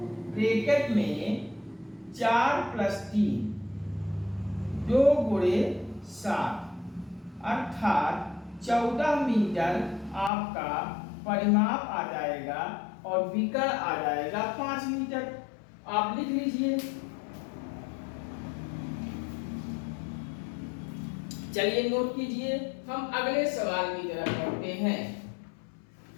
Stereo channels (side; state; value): right; drops out; at 10.3 s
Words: ब्रैकेट में 4 प्लस 3, 2 गुणे 7, अर्थात 14 मीटर आपका परिमाप आ जाएगा और विकर्ण आ जाएगा 5 मीटर। आप लिख लीजिए। चलिए नोट कीजिए, हम अगले सवाल की तरफ बढ़ते हैं।